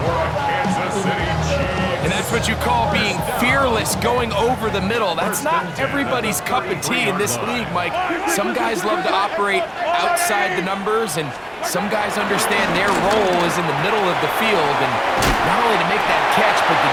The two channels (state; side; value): identical; both; correlation 1.00